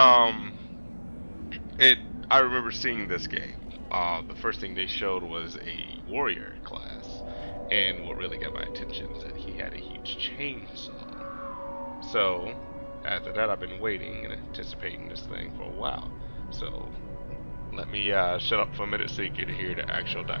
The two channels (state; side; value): inverted; both; correlation -1.00